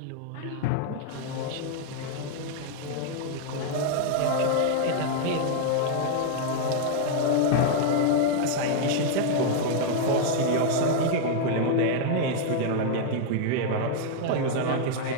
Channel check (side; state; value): both; different; correlation 0.00